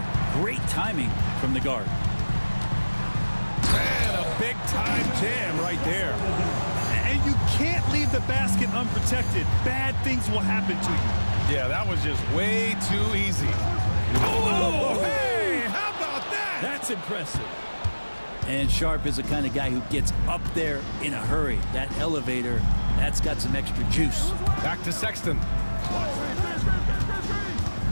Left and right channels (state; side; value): inverted; both; correlation -1.00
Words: Great timing from the guard. And a big-time jam right there. And you can't leave the basket unprotected. Bad things will happen to you. Yeah, that was just way too easy. Oh, hey, how about that? That's impressive. And Sharp is the kind of guy who gets up there in a hurry. That elevator, that's got some extra juice. Back to Sexton.